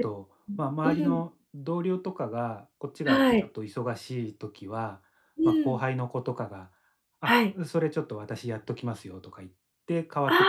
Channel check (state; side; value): identical; both; correlation 1.00